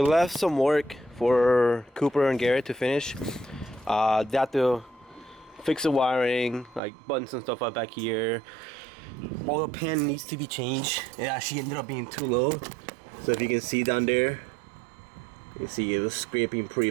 left some work for Cooper and Garrett to finish. They have to fix the wiring, like buttons and stuff up back here. All the pan needs to be changed. It actually ended up being too low. So if you can see down there, you see it was scraping pretty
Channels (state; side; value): drops out; left; at 6.8 s